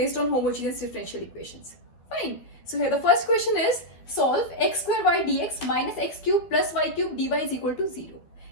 on homogeneous differential equations. Fine. So here the first question is solve x square y dx minus x cube plus y cube dy is equal to 0.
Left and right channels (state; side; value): late; right; 12 ms